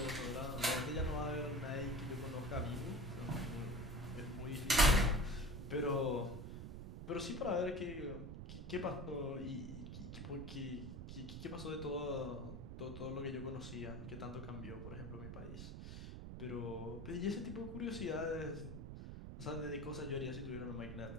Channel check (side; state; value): right; noise; rumble, 8 dB below the sound